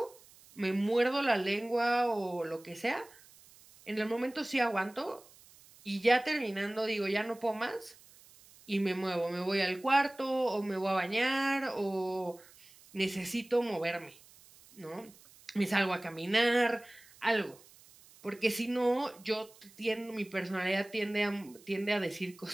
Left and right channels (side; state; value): right; noise; hiss, 24 dB below the sound